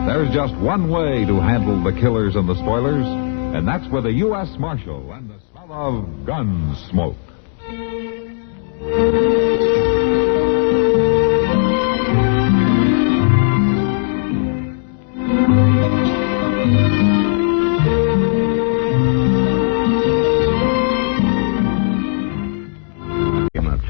there's just one way to handle the killers and the spoilers, and that's with a U.S. Marshal and the smell of Gunsmoke. Come up,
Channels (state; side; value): silent; right; digital silence